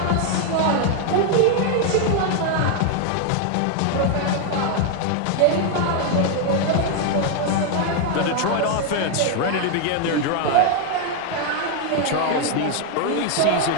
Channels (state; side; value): different; both; correlation 0.01